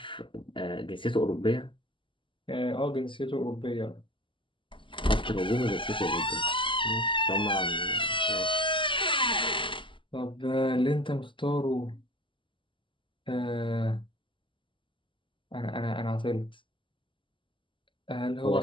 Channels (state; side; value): late; right; 0.25 ms